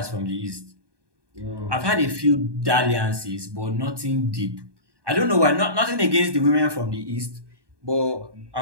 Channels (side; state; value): left; late; 1.2 ms